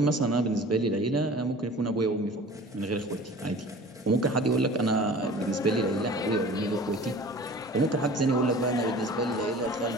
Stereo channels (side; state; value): both; normal; correlation 0.43